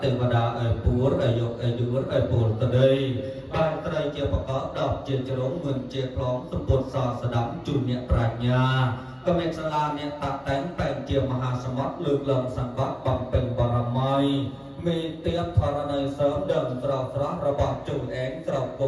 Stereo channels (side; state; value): both; identical; correlation 1.00